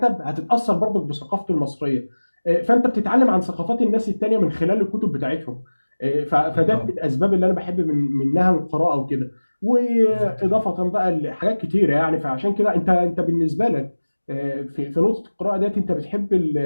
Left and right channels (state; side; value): inverted; both; correlation -1.00